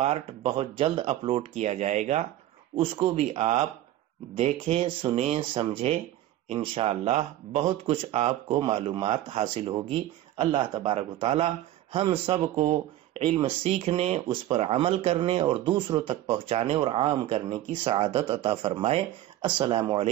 بہت جلد اپلوڈ کیا جائے گا، اس کو بھی آپ دیکھیں، سنیں، سمجھیں، انشاءاللہ بہت کچھ آپ کو معلومات حاصل ہوگی۔ اللہ تبارک و تعالی ہم سب کو علم سیکھنے، اس پر عمل کرنے اور دوسروں تک پہنچانے اور عام کرنے کی سعادت عطا فرمائے۔ السلام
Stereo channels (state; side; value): quieter; left; 13.9 dB